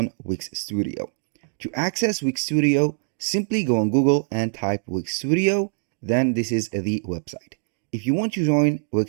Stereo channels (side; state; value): left; silent; digital silence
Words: Wix Studio. To access Wix Studio, simply go on Google and type Wix Studio, then this is the website. If you want to join